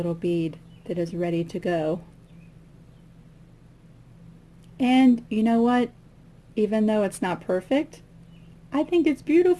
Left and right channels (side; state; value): both; identical; correlation 1.00